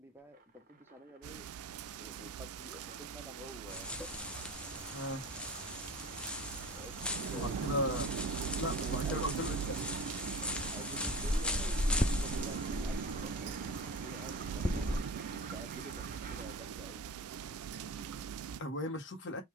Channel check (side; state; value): both; normal; correlation 0.34